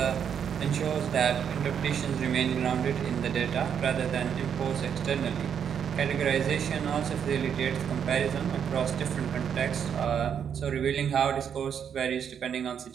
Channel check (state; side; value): quieter; left; 8.0 dB